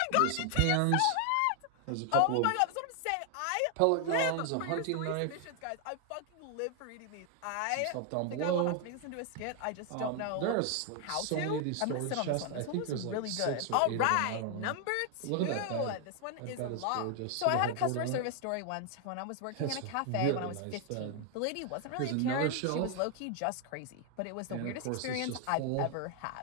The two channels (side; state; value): both; different; correlation 0.00